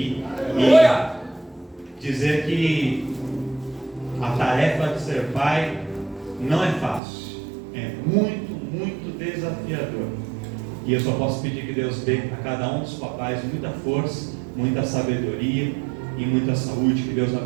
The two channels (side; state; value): left; drops out; at 7.0 s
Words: E dizer que a tarefa de ser pai não é fácil, é muito, muito desafiador. E eu só posso pedir que Deus dê a cada um dos papais muita força, muita sabedoria e muita saúde. Que Deus